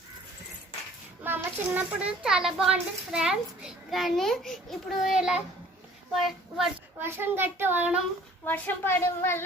మా అమ్మ చిన్నప్పుడు చాలా బాగుంటుంది ఫ్రెండ్స్, కానీ ఇప్పుడు ఇలా వర్షం గట్టి వర్షం పడడం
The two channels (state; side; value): normal; both; correlation 0.53